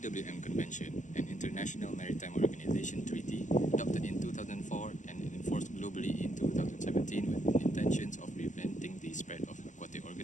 Convention, an international maritime organization treaty, adopted in 2004 and enforced globally in 2017 with intentions of preventing the spread of aquatic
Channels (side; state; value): right; late; 0.36 ms